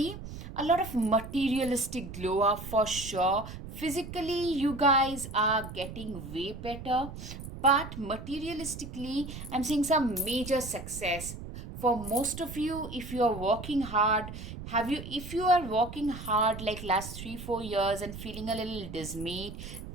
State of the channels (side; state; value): right; noise; rumble, 11 dB below the sound